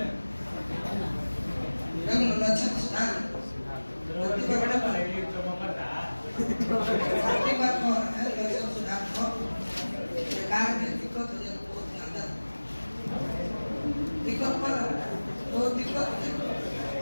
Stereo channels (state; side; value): inverted; both; correlation -1.00